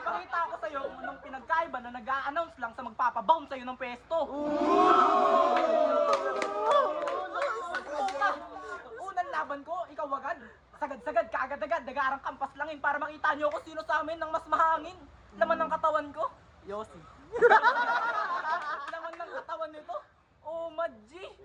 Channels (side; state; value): both; identical; correlation 1.00